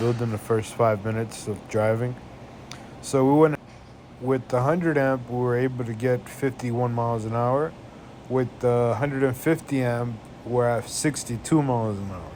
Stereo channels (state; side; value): identical; both; correlation 1.00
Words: in the first 5 minutes of driving. So, we went with the 100 amp, we were able to get 51 miles an hour. With the 150 amp, we're at 62 miles an hour.